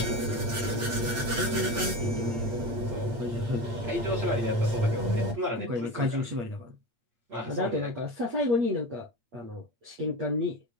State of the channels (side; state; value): left; late; 8.7 ms